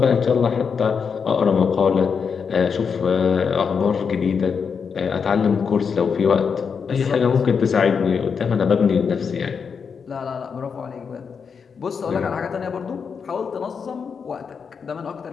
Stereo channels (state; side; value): quieter; right; 6.1 dB